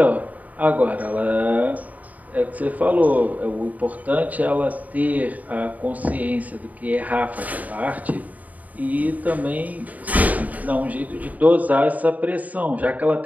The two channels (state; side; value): late; left; 0.074 ms